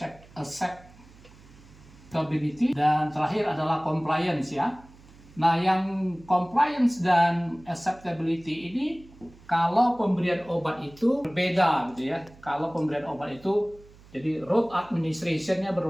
dan terakhir adalah compliance ya. Nah, yang compliance dan acceptability ini kalau pemberian obat itu berbeda gitu ya. Kalau pemberian obat itu jadi route administration-nya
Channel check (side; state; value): right; noise; hum, 24 dB below the sound